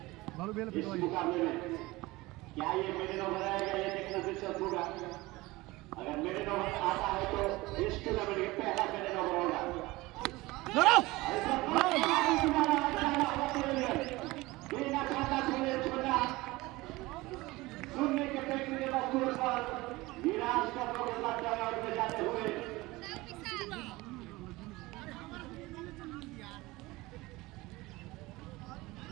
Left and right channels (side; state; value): left; quieter; 20.7 dB